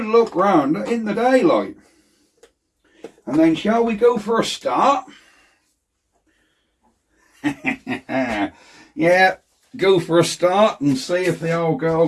look round in the daylight. And then shall we go for a start? Yeah, go for a start and see if the old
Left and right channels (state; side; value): identical; both; correlation 1.00